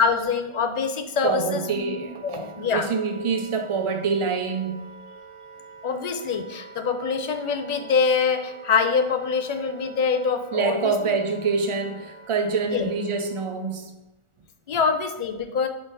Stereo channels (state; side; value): late; left; 1.4 ms